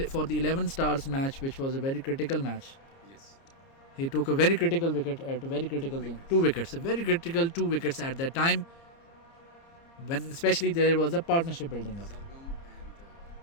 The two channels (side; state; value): right; late; 30 ms